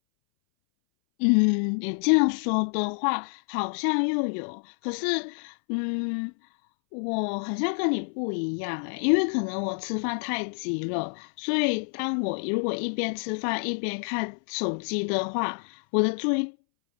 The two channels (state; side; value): silent; right; 60 dB below the other